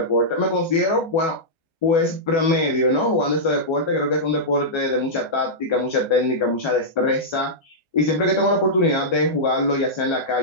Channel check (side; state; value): right; late; 1.3 ms